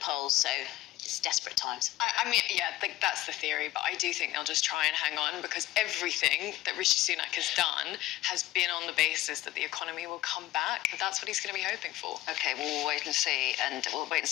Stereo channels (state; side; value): quieter; right; 15.9 dB